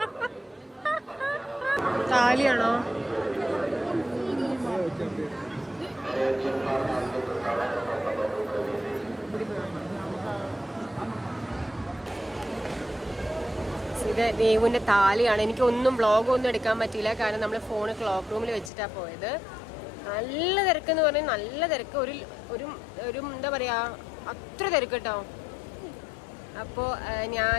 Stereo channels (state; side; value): drops out; right; at 18.7 s